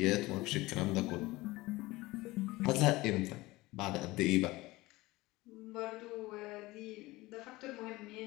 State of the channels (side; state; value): right; quieter; 20.1 dB